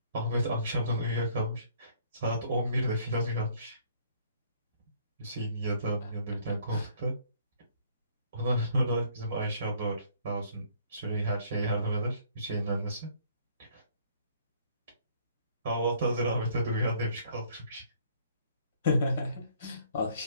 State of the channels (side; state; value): both; inverted; correlation -0.61